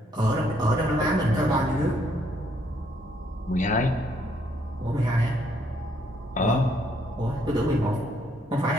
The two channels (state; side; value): normal; both; correlation 0.70